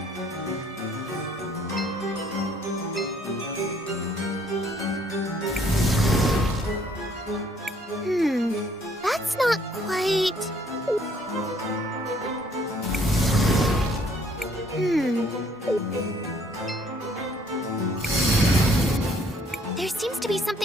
That's not quite... There seems to be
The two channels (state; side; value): normal; both; correlation 0.63